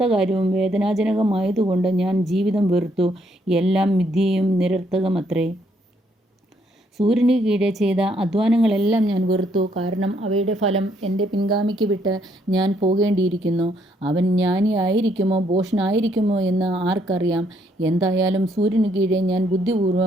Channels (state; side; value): normal; both; correlation 0.71